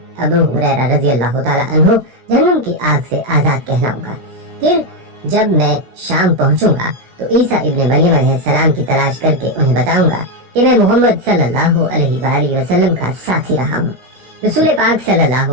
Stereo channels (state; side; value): late; left; 16 ms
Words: ابو ہریرہ رضی اللہ تعالیٰ عنہ جہنم کی آگ سے آزاد کہلاؤں گا۔ پھر جب میں شام پہنچوں گا تو عیسیٰ ابن مریم علیہ السلام کی تلاش کر کے انہیں بتاؤں گا کہ میں محمد صلی اللہ علیہ وآلہ وسلم کا ساتھی رہا ہوں۔ رسول پاک صلی اللہ